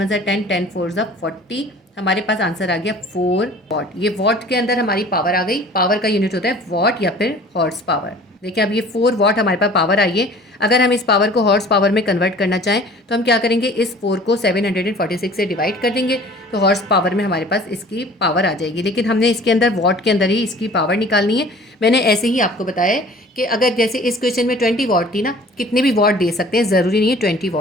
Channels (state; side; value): normal; both; correlation 0.47